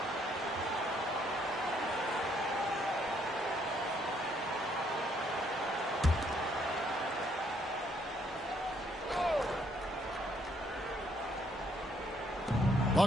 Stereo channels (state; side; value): normal; both; correlation 0.69